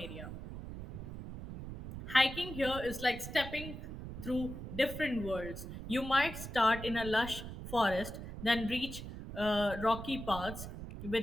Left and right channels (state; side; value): noise; right; rumble, 9 dB below the sound